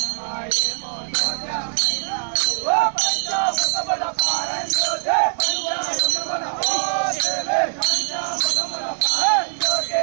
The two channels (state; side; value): silent; left; 64 dB below the other